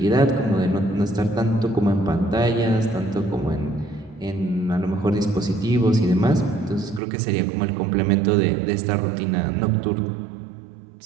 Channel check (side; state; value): left; drops out; at 7.0 s